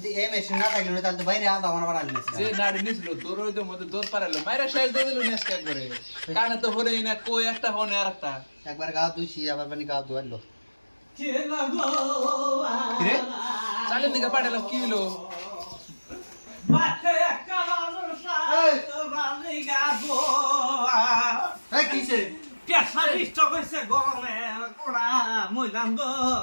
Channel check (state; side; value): inverted; both; correlation -1.00